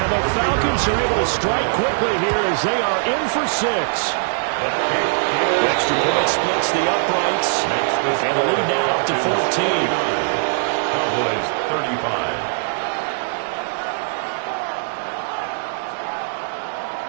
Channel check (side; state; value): left; silent; digital silence